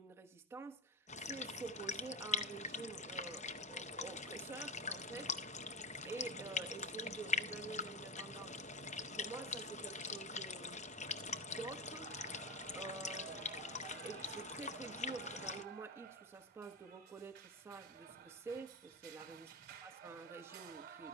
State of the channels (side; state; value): both; normal; correlation 0.19